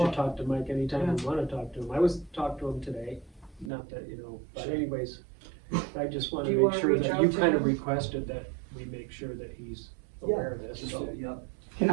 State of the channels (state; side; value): drops out; left; at 3.7 s